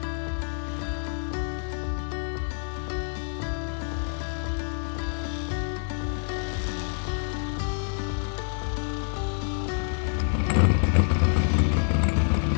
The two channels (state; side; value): silent; right; digital silence